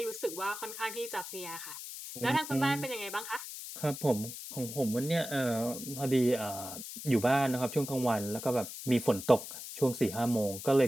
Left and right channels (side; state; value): left; noise; hiss, 10 dB below the sound